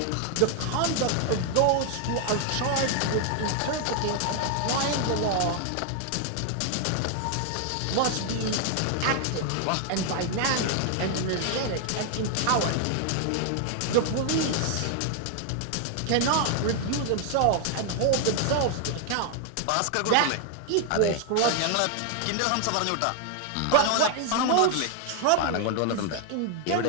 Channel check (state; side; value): different; both; correlation 0.00